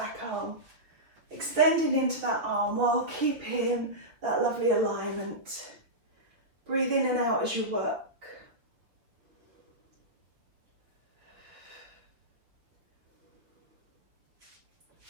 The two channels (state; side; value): late; left; 5.9 ms